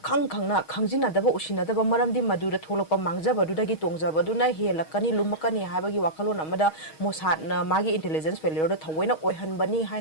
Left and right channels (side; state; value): right; late; 6.3 ms